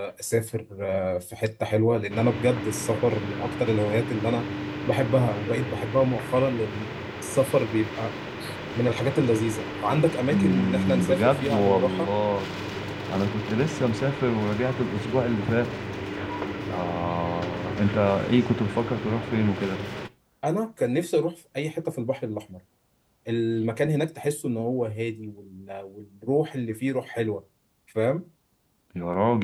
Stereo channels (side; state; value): both; identical; correlation 1.00